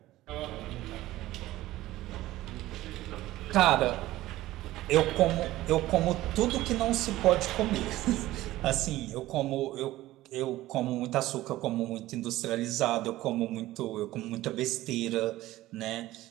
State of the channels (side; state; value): left; quieter; 16.2 dB